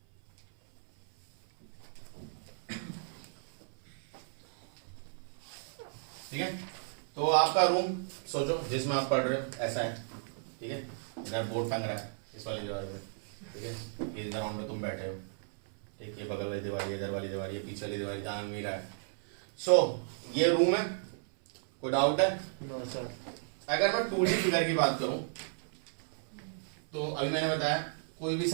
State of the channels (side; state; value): left; silent; 55 dB below the other